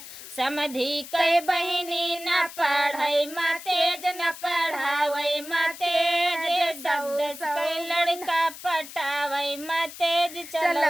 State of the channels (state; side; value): noise; left; hiss, 14 dB below the sound